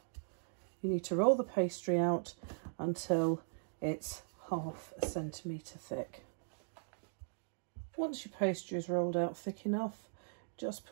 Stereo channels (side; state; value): left; silent; digital silence